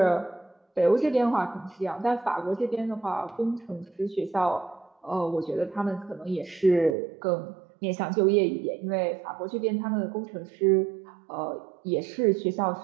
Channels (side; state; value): left; drops out; at 7.0 s